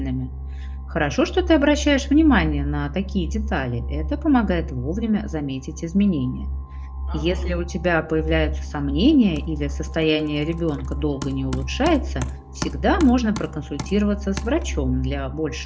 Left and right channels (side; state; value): both; identical; correlation 1.00